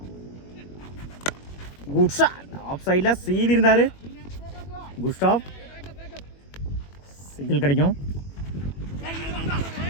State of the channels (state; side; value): late; right; 21 ms